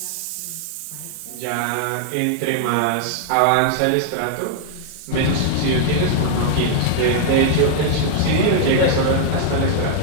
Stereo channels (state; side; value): different; both; correlation 0.00